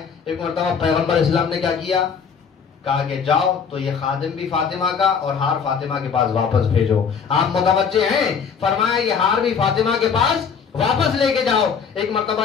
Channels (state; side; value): quieter; right; 6.4 dB